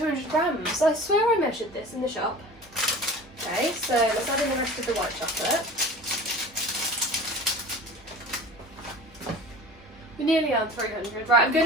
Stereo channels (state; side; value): normal; both; correlation 0.39